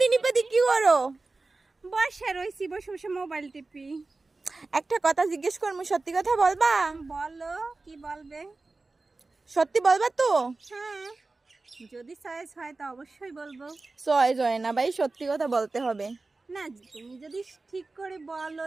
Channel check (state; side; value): quieter; left; 3.5 dB